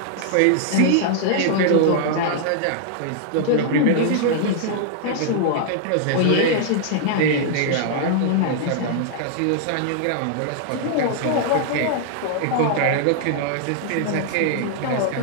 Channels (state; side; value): different; both; correlation -0.01